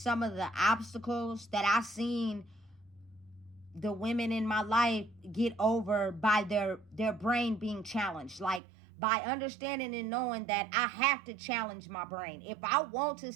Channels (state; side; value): drops out; left; at 8.6 s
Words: of the obstacles that I've seen the women in my life get over by their brain being challenged. Like, by understanding and knowing that I have to challenge my brain. If I want to